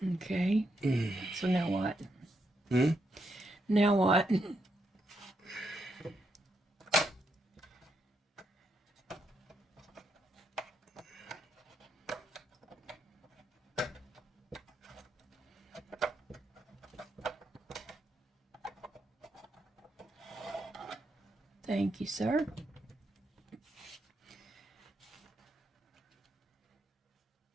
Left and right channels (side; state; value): both; normal; correlation 0.80